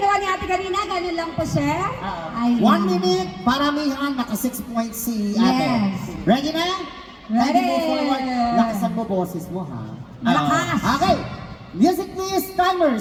ni ate kanina, ganun lang po, sir. 1 minute, paramihan, naka 6 points si ate. Yes. Ready na? Ready. Ready move forward. Lakasan mo boses mo, ha? Malakas. Okay. Music please, timer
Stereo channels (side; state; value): both; identical; correlation 1.00